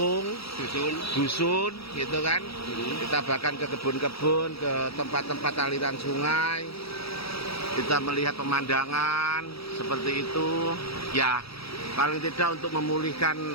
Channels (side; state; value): right; late; 0.76 ms